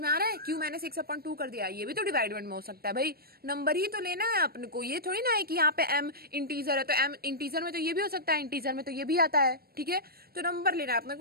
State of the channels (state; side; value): late; left; 0.44 ms